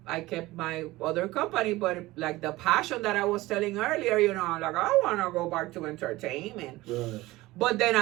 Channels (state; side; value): quieter; left; 18.9 dB